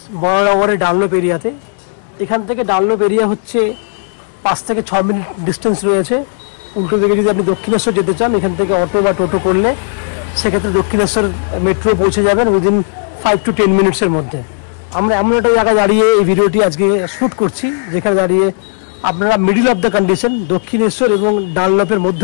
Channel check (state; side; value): silent; right; digital silence